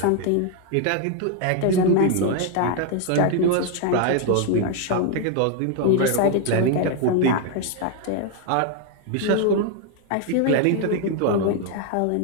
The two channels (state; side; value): different; both; correlation 0.01